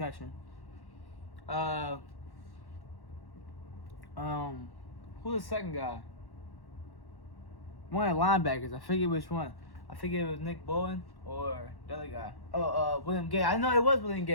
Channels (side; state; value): right; late; 1.1 ms